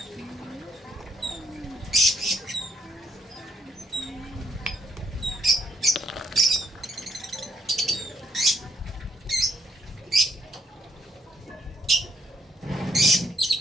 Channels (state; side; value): normal; both; correlation 0.72